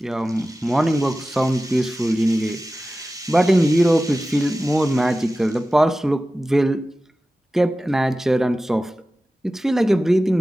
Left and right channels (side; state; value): both; normal; correlation 0.95